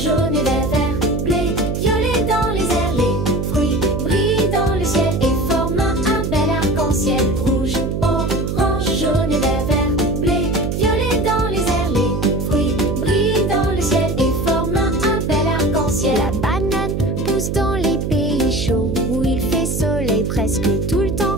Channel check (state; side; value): noise; right; hum, 2 dB below the sound